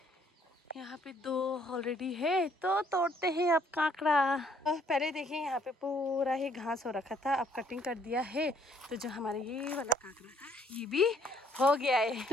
यहाँ पे 2 ऑलरेडी है। तो तोड़ते हैं अब काकड़ा। पहले देखिए यहाँ पे पूरा ही घास हो रखा था, अब कटिंग कर दिया है। तो जो हमारा ये वाला काकड़ा था ये भी हो गया है।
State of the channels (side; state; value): both; normal; correlation 0.64